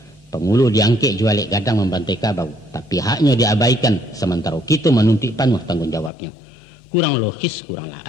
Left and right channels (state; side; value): drops out; right; at 6.1 s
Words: Pengulu diangkek jualik gadang membantai kabau, tapi haknya diabaikan sementara kita menuntut penuh tanggung jawabnya. Kurang logis, kuranglah